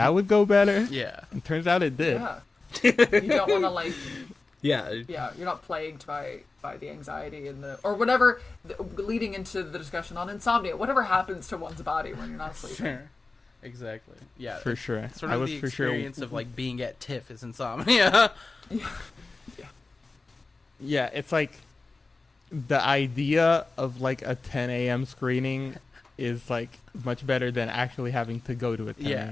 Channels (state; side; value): quieter; right; 3.6 dB